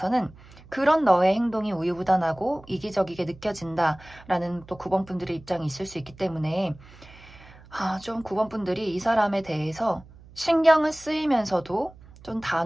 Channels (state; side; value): noise; right; hum, 22 dB below the sound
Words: 그런 너의 행동이 우유부단하고 이기적이게 느껴진다라는 또 9번 분들의 입장이 있을 수 있기 때문에 좀 9번 분들이 이 사람에 대해서 신경을 쓰이면서도 좀